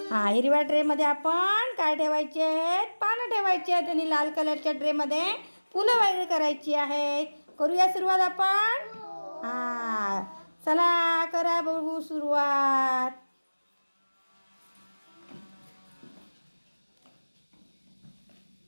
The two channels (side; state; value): both; inverted; correlation -1.00